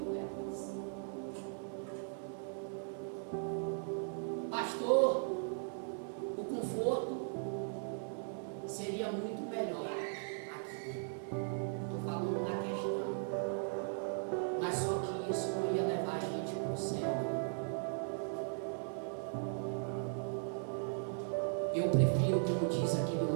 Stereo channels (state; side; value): silent; left; digital silence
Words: Pastor, o conforto seria muito melhor aqui. Estou falando da questão. Mas só que isso não ia levar a gente para o céu. Eu prefiro, como diz aquele